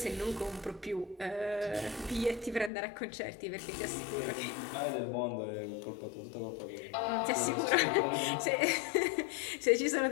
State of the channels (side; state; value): right; drops out; at 2.7 s